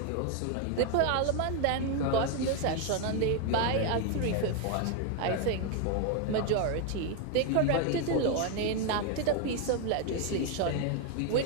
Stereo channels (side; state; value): both; different; correlation 0.01